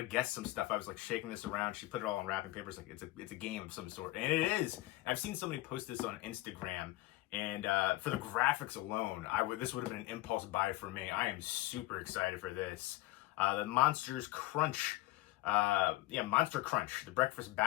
guess some stuff. I was like shaking this around. She put it all on wrapping paper. It's like it's a game of some sort, and it is. I've seen somebody post this on Instagram, and for the graphics alone, this would have been an impulse buy for me. I am super excited for this. The Monsters Crunch, Monster Crunch, the breakfast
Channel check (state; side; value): quieter; right; 18.3 dB